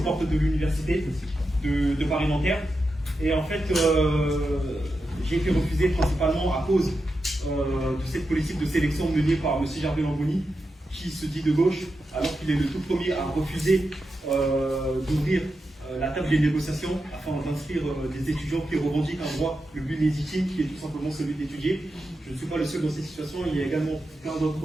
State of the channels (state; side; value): normal; both; correlation 0.88